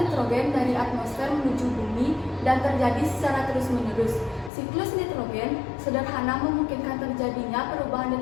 nitrogen dari atmosfer menuju bumi dan terjadi secara terus-menerus. Siklus nitrogen sederhana memungkinkan terjadinya perubahan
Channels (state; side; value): drops out; right; at 4.5 s